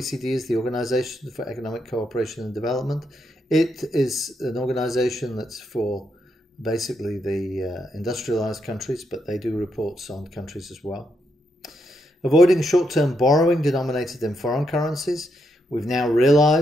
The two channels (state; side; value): normal; both; correlation 0.80